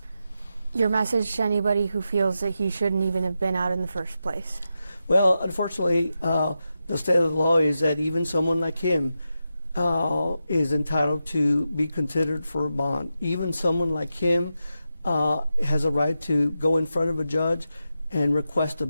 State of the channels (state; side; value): inverted; both; correlation -0.89